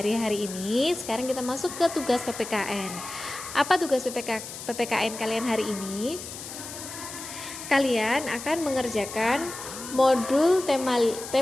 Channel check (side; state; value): left; noise; hiss, 11 dB below the sound